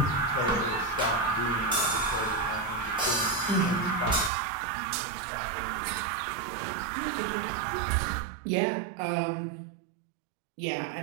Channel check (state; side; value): drops out; left; at 4.3 s